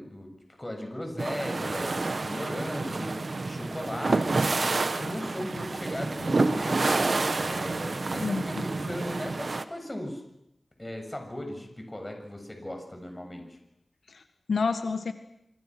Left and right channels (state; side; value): normal; both; correlation 0.95